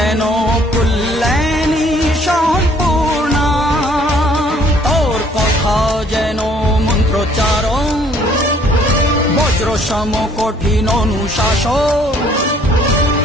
কল্যাণী সম্পূর্ণা। তোর কথা যেন মন্ত্রোচ্চারণ, বজ্র সম কঠিন অনুশাসন।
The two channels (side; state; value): both; normal; correlation 0.60